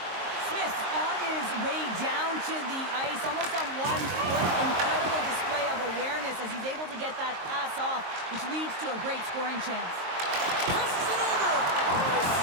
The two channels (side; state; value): left; late; 23 ms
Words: Smith on his way down to the ice, almost on 1 foot. Incredible display of awareness as he's able to get that pass off, which leads to a great scoring chance. Passes it over. Oh, he